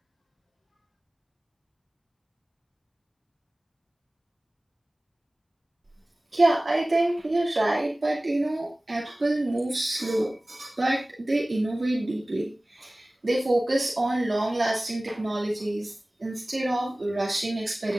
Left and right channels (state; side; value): normal; both; correlation 0.98